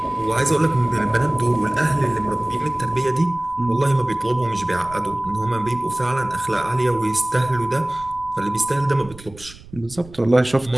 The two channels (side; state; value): right; noise; rumble, 19 dB below the sound